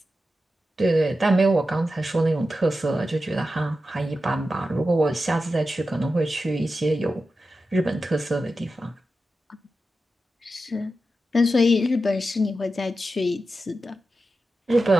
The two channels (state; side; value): normal; both; correlation 0.91